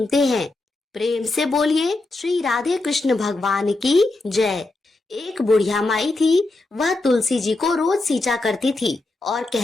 हैं। प्रेम से बोलिए श्री राधे कृष्ण भगवान की जय। एक बुढ़िया माई थी, वह तुलसी जी को रोज सींचा करती थी और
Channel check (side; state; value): right; quieter; 3.0 dB